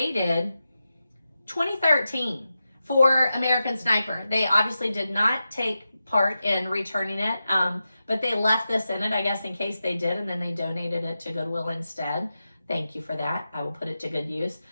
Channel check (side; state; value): both; inverted; correlation -0.91